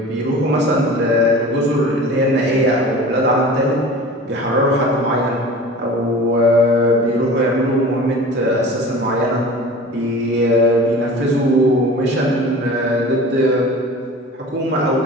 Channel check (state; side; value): normal; both; correlation 0.39